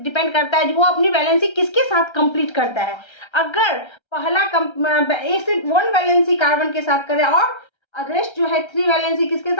करता है, जो वो अपनी वैलेंसी किसके साथ कंप्लीट करता है। अगर पहला एक से 1 वैलेंसी कार्बन के साथ करे और रेस्ट जो है 3 वैलेंसी किसके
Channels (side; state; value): right; late; 1.3 ms